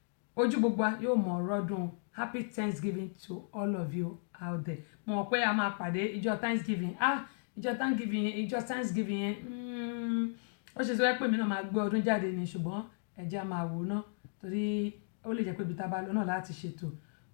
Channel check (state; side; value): silent; right; digital silence